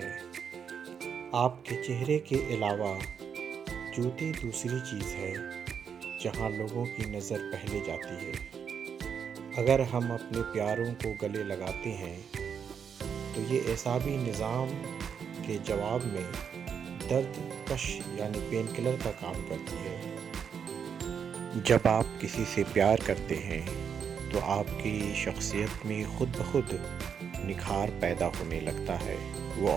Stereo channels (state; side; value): quieter; left; 7.3 dB